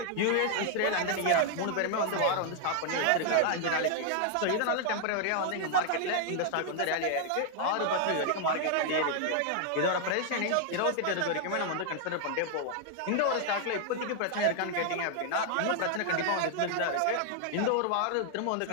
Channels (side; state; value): both; different; correlation 0.00